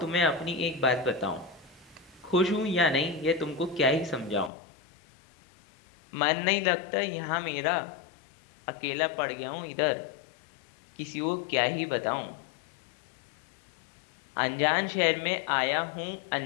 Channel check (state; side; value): drops out; right; at 4.5 s